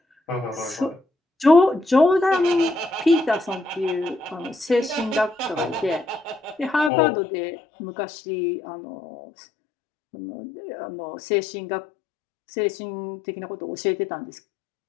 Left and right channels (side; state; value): right; drops out; at 6.9 s